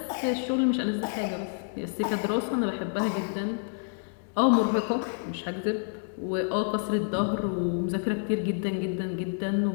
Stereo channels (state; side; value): silent; right; digital silence